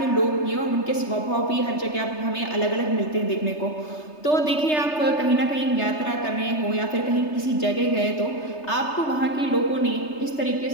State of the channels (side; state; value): right; late; 3.3 ms